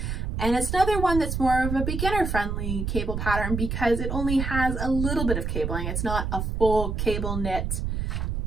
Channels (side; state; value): right; noise; rumble, 2 dB below the sound